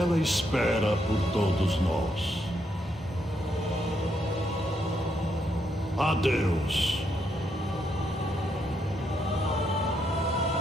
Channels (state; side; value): normal; both; correlation 0.77